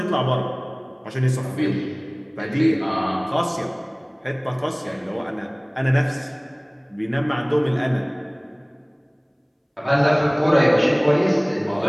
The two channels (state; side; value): identical; both; correlation 1.00